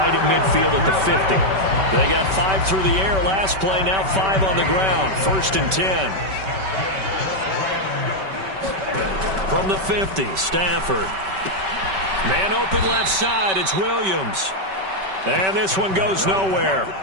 at midfield at the 50. They got 5 through the air last play, now 5 on the ground. 1st and 10. From the 50, Stafford. Man open left side, it's Williams. And this one goes nowhere.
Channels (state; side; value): late; left; 5.2 ms